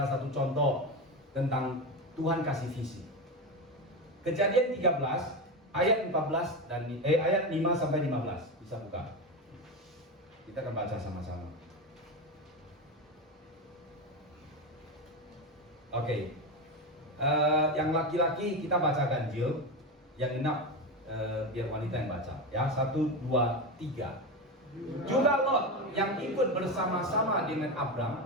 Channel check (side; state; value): both; normal; correlation 0.18